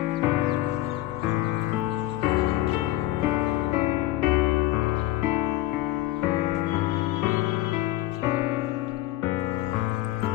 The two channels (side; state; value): right; quieter; 16.0 dB